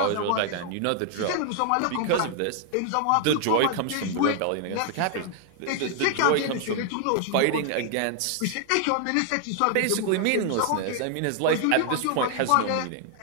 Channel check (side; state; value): both; different; correlation 0.00